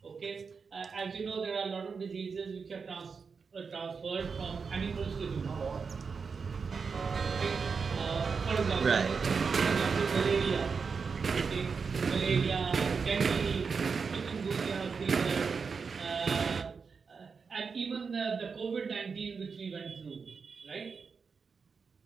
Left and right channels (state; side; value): quieter; left; 5.4 dB